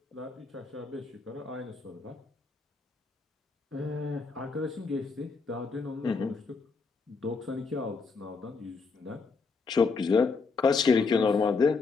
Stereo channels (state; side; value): quieter; right; 4.5 dB